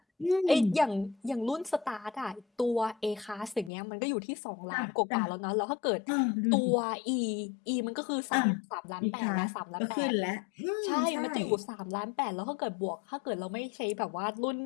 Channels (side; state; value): right; drops out; at 3.7 s